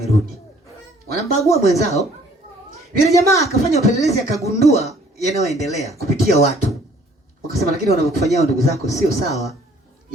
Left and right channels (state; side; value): normal; both; correlation 0.58